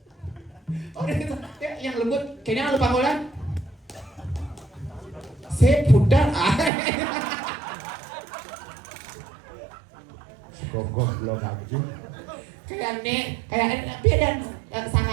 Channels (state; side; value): drops out; left; at 6.7 s